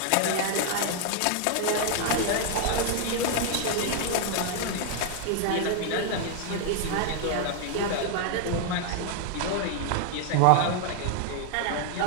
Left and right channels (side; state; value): both; different; correlation 0.00